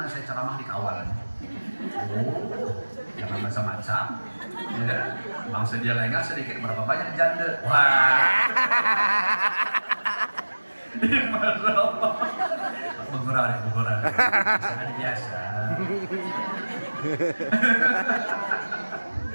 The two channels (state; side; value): inverted; both; correlation -1.00